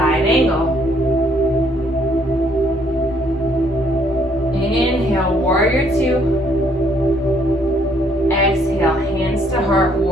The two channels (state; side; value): normal; both; correlation 0.66